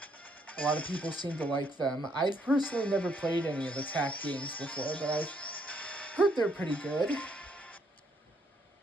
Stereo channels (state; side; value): normal; both; correlation 0.71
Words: a lot of people seem to like them. I've personally never played any of the Tak games before, but I've heard they're pretty good.